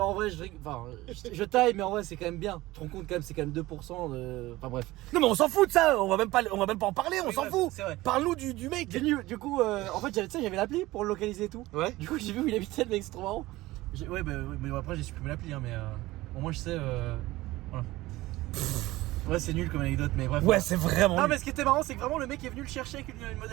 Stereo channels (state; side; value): quieter; left; 18.4 dB